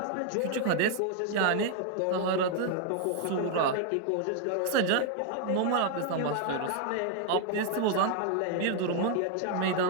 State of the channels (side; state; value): both; different; correlation 0.00